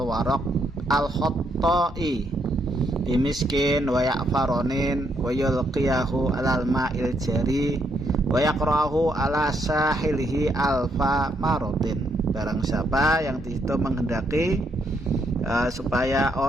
warok al khottoi bimiskin wa yakfaronin wa yulqiyahu alal ma'il jari wa yakrahu ala sahilihi alfa marotin. Barang siapa yang disitu menghendaki supaya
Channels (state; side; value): normal; both; correlation 0.75